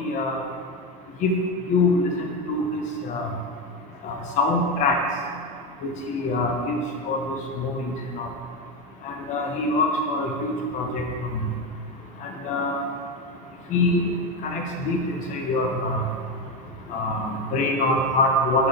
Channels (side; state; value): both; normal; correlation 0.14